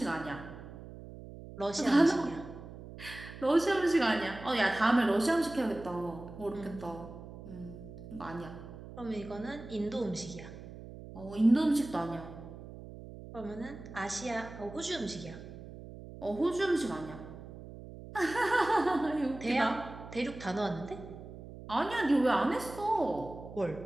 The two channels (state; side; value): noise; right; hum, 14 dB below the sound